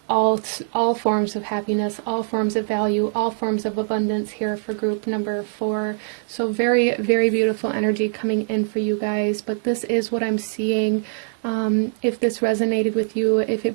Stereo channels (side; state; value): left; silent; digital silence